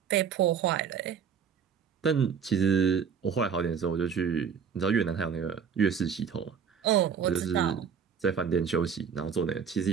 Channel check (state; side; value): quieter; left; 7.1 dB